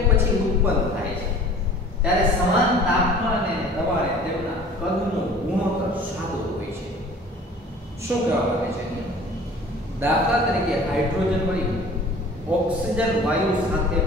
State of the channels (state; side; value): normal; both; correlation 0.46